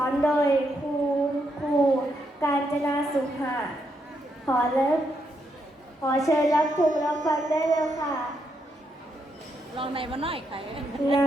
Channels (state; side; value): normal; both; correlation 0.79